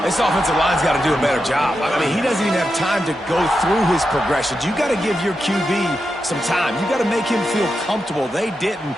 This offensive line's got to do a better job. I mean, he doesn't even have time to go through his progressions. You got to give your QB some time. You got to make him feel comfortable. They didn't.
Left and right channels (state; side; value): normal; both; correlation 0.88